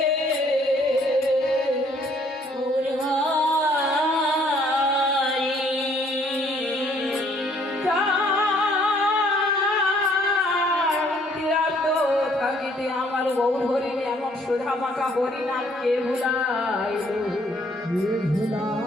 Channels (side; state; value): both; normal; correlation 0.63